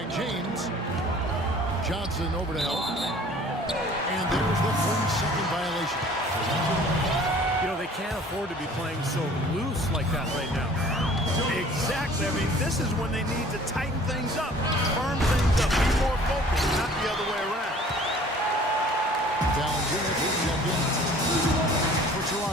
James. Johnson over to help. And there's the 30-second violation. You know, they can't afford to be playing so loose like that right now. Exactly. I mean, this is when they need to tighten things up, firm things up, be more focused, not the other way around. Down Jr. checked in for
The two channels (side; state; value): both; normal; correlation 0.50